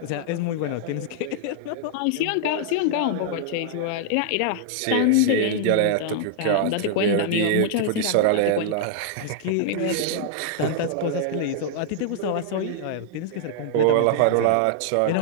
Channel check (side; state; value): both; different; correlation -0.01